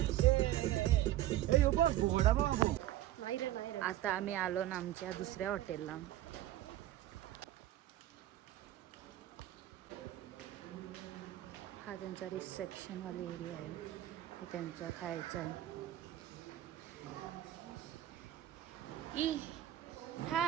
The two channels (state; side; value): quieter; left; 13.8 dB